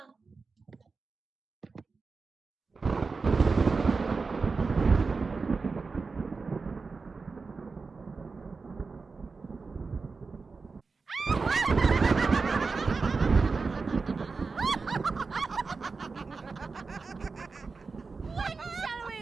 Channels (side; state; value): left; quieter; 4.4 dB